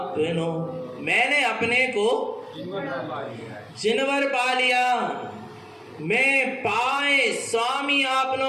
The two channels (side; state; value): both; identical; correlation 1.00